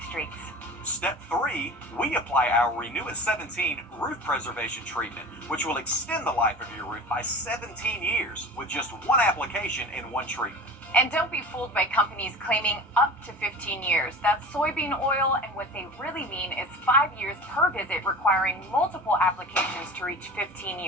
streaks. Step 3, we apply our Renew It 17 roof preservation treatment, which will extend the life of your roof by 17 years with just one application and one treatment. And don't be fooled by companies claiming up to 15 years. That's soybean oil, and what they really mean is 5 years per visit, requiring multiple applications to reach 15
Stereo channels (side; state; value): both; normal; correlation 0.36